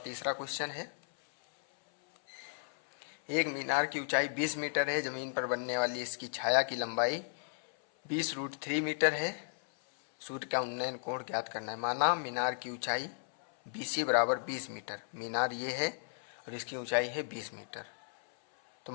तीसरा क्वेश्चन है, एक मीनार की ऊंचाई 20 मीटर है, जमीन पर बनने वाली इसकी छाया की लंबाई 20√3 मीटर है, सूर्य का उन्नयन कोण ज्ञात करना है। माना मीनार की ऊंचाई BC बराबर 20 मीटर, मीनार ये है और इसकी ऊंचाई है 20 मीटर, तो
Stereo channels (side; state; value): right; silent; 55 dB below the other